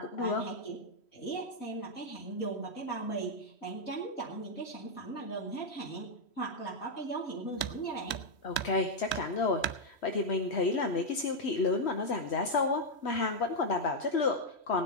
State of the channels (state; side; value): late; right; 3.1 ms